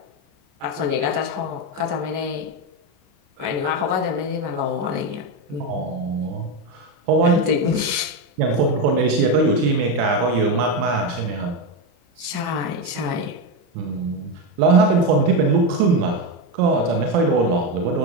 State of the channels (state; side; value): late; left; 34 ms